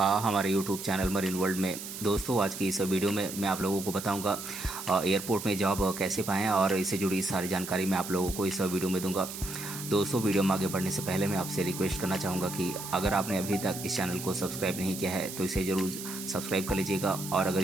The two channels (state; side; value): noise; right; hiss, 9 dB below the sound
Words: हमारे यूट्यूब चैनल मरीन वर्ल्ड में। दोस्तों, आज की इस वीडियो में मैं आप लोगों को बताऊंगा एयरपोर्ट में जॉब कैसे पाएं और इससे जुड़ी सारी जानकारी मैं आप लोगों को इस वीडियो में दूंगा। दोस्तों, वीडियो में आगे बढ़ने से पहले मैं आपसे रिक्वेस्ट करना चाहूँगा कि अगर आपने अभी तक इस चैनल को सब्सक्राइब नहीं किया है तो इसे ज़रूर सब्सक्राइब कर लीजिएगा और अगर